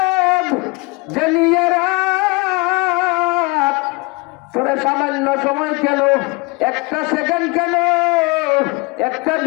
জানিয়ে রাত তোরা সামান্য সময় কেন, একটা সেকেন্ড কেন, একটা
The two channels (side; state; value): right; quieter; 26.5 dB